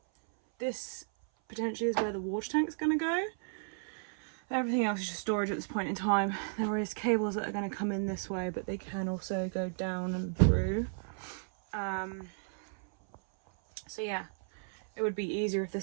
This potentially is where the water tank's going to go. Everything else is just storage at this point in time. There is cables that are going to come in this way, but they can also go down and through. So yeah, it would be easier if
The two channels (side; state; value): left; silent; 55 dB below the other